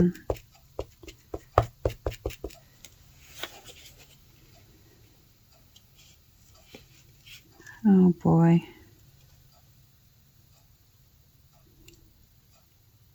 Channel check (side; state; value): both; identical; correlation 1.00